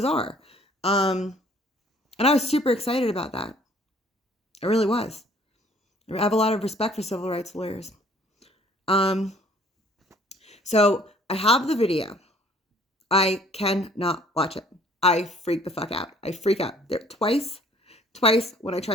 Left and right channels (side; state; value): both; normal; correlation 0.57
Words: And I was super excited about that. I really was. I have a lot of respect for civil rights lawyers. So I have the video. I cannot watch it. I freak the fuck out. I freak out. There twice when I